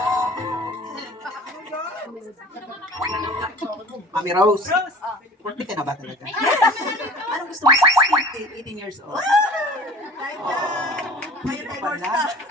Mami Rose, Rose! birthday ka na ba talaga? Anong gusto mo? 16? 18 years old. Kahit na, ngayon ay North na.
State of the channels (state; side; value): normal; both; correlation 0.43